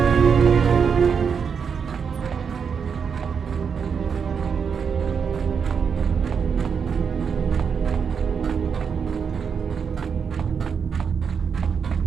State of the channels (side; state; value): left; quieter; 6.5 dB